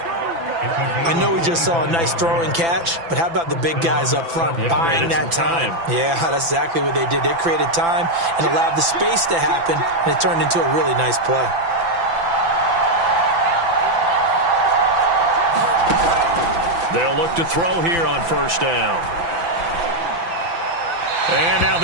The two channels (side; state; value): left; late; 6.0 ms